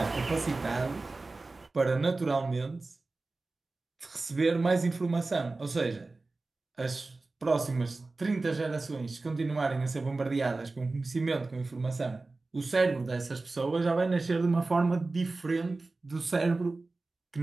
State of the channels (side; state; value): left; quieter; 3.4 dB